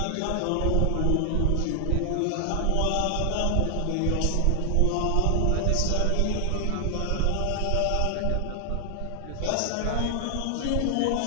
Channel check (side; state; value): both; different; correlation 0.00